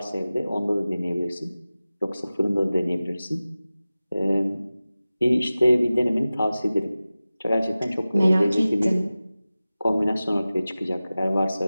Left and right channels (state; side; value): inverted; both; correlation -0.96